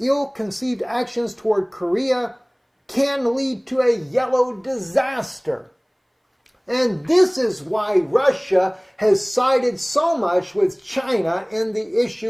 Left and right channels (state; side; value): identical; both; correlation 1.00